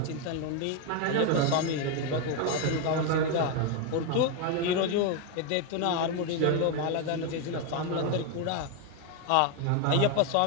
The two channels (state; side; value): different; both; correlation 0.01